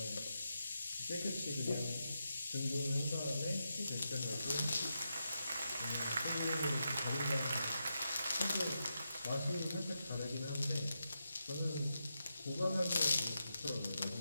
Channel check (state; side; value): inverted; both; correlation -0.86